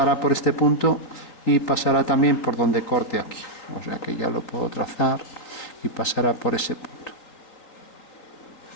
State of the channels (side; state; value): right; late; 3.8 ms